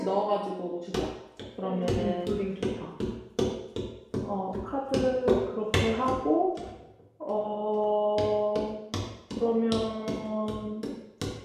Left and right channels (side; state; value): both; identical; correlation 1.00